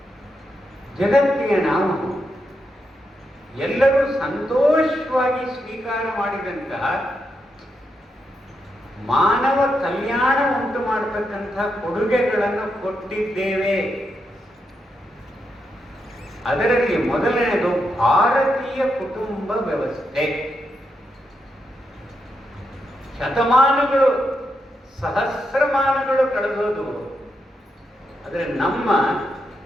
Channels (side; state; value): both; normal; correlation 0.83